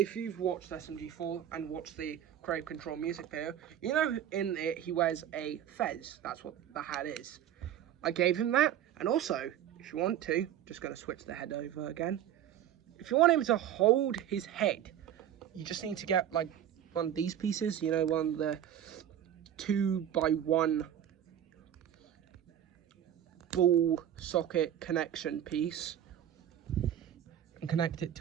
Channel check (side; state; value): left; quieter; 10.7 dB